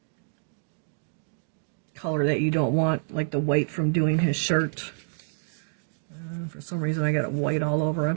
color that you don't want, like the white from doing his shirt. For some reason I got it white all over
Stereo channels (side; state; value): left; silent; digital silence